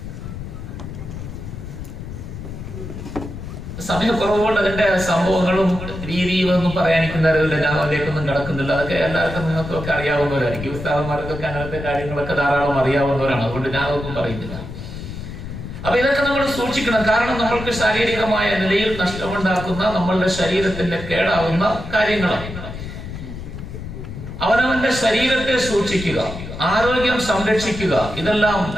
സമയക്കുറവുകൊണ്ട് അതിന്റെ സംഭവങ്ങളും രീതിയും ഒന്നും പറയാനിരിക്കുന്നവരില്ല. ഞാൻ അതിലേക്കൊന്നും കിടക്കുന്നില്ല. അതൊക്കെ എല്ലാവർക്കും നിങ്ങൾക്കൊക്കെ അറിയാവുന്നവരായിരിക്കും. ഉസ്താദന്മാർക്കൊക്കെ അങ്ങനത്തെ കാര്യങ്ങളൊക്കെ ധാരാളം അറിയാവുന്നവരാണ്. അതുകൊണ്ട് ഞാൻ അതൊന്നും പറയുന്നില്ല. അപ്പൊ ഇതൊക്കെ നമ്മൾ സൂക്ഷിക്കണം. കാരണം നമ്മൾക്ക് ശാരീരികമായ നിലയിൽ നഷ്ടമുണ്ടാക്കുന്ന, നമ്മളുടെ ശരീരത്തിന്റെ കേടാവുന്ന കാര്യങ്ങളാണ്. അവനവന്റെ ശരീരത്തെ സൂക്ഷിക്കുക, ആരോഗ്യം സംരക്ഷിക്കുക, ഇതെല്ലാം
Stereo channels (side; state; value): left; noise; rumble, 9 dB below the sound